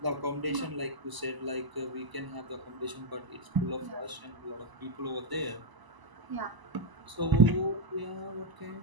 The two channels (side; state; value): left; late; 1.0 ms